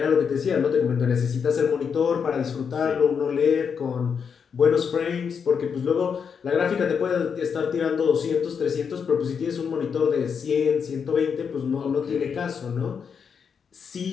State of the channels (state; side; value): quieter; right; 6.6 dB